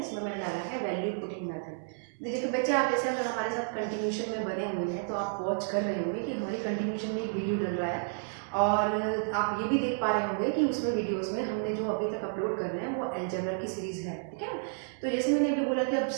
मैंने डाला है वैल्यू पुटिंग मेथड। देखिए तो बच्चे, आप जैसे अगर हमारे साथ कंटिन्यूशन में बने हुए हैं तो आप वॉच कर रहे होंगे कि हमारी कंटिन्यूशन में एक वीडियो डल रहा है, और आप ये भी देख पा रहे होंगे कि उसमें वीडियोस में हमने जो अभी तक अपलोड कर रहे हैं वो अलजेब्रा की सीरीज है, ठीक है। तो जैसे मैंने अभी बोला कि अब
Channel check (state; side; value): silent; left; digital silence